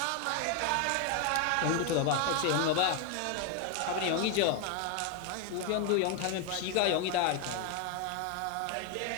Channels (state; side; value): different; both; correlation 0.01